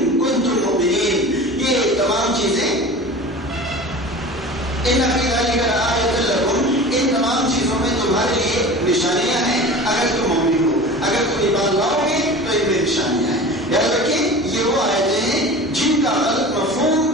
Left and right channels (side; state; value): both; normal; correlation 0.36